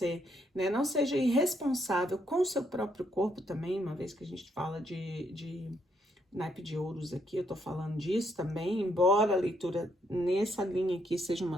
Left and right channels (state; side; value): normal; both; correlation 0.73